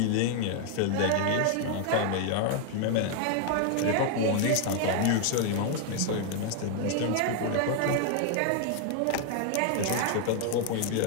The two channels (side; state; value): both; different; correlation 0.00